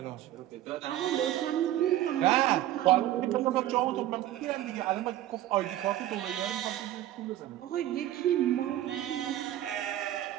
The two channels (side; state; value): left; quieter; 13.5 dB